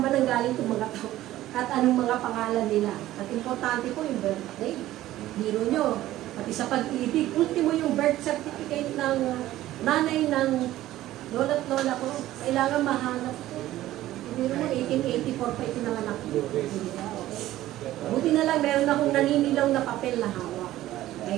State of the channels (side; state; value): left; quieter; 14.8 dB